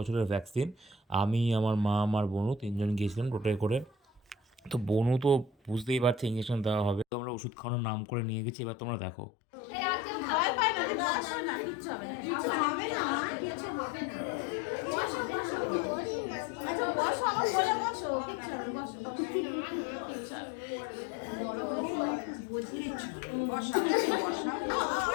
ভ্যাকসিন। আমি, আমার মা, আমার বনু 3 জন গিয়েছিলাম টোটোয় করে। তো বনু তো বুঝতেই পারছে ইঞ্জেকশন দেওয়া হবে, তো আমরা ওষুধ খাওয়ানোর নাম করে নিয়ে গেছি। এবার তোমরা দেখো।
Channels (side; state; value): right; drops out; at 7.1 s